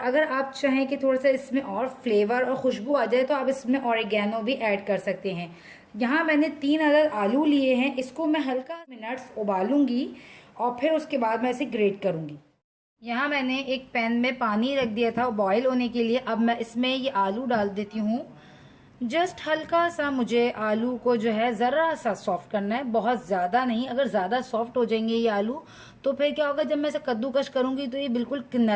आप चाहें कि थोड़ा सा इसमें और फ्लेवर और खुशबू आ जाए तो आप इसमें ऑरिगेनो भी ऐड कर सकते हैं। यहाँ मैंने 3 अदद आलू लिए हैं, इसको मैं हल्का मिनट्स उबालूंगी और फिर उसके बाद मैं इसे ग्रेट करूंगी। यहाँ मैंने एक पैन में पानी रख दिया था बॉईल होने के लिए। अब मैं इसमें ये आलू डाल देती हूँ। जस्ट हल्का सा मुझे आलू को जो है ज़रा सा सॉफ्ट करना है, बहुत ज़्यादा नहीं। अगर ज़्यादा सॉफ्ट हो जाएंगे ये आलू तो फिर क्या होगा, जब मैं इसे कद्दूकश करूँगी तो ये बिल्कुल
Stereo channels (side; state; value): both; identical; correlation 1.00